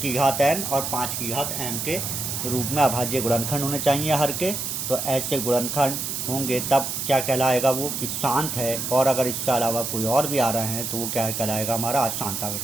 घात n और 5 की घात m के रूप में अभाज्य गुणनखंड होने चाहिए हर के। तो ऐसे गुणनखंड होंगे तब क्या कहलाएगा वो कि शांत है, और अगर इसके अलावा कोई और भी आ रहे हैं तो वो क्या कहलाएगा, हमारा अशांत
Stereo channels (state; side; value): noise; right; hiss, 3 dB below the sound